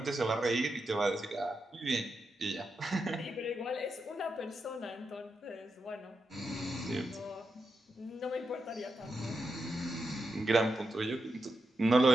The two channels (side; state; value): both; normal; correlation 0.86